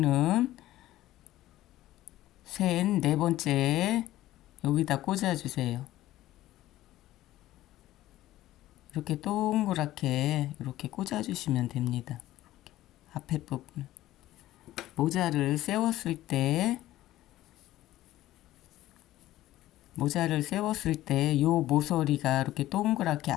셋, 네 번째 여기다 꽂아주세요. 이렇게 동그랗게 이렇게 꽂아주시면 됩니다. 앞에 부분. 모자를 세웠을 때 요 모서리가 이렇게 동그랗게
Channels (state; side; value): quieter; right; 15.1 dB